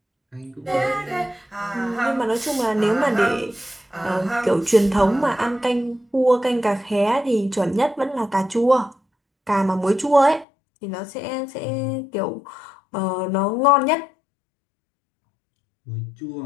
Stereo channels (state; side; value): drops out; right; at 10.5 s